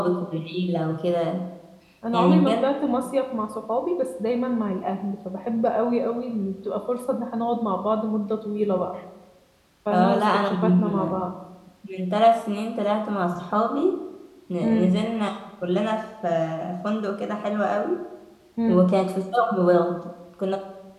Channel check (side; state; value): both; identical; correlation 1.00